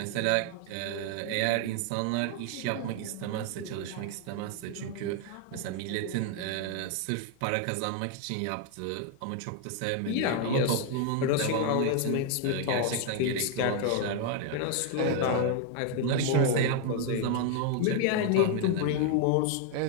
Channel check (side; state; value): both; different; correlation 0.00